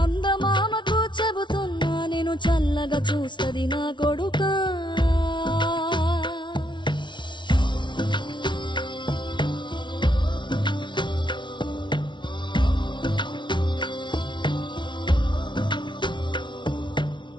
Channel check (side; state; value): right; late; 0.23 ms